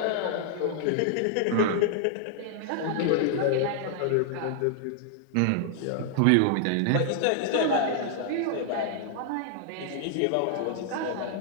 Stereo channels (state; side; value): different; both; correlation 0.00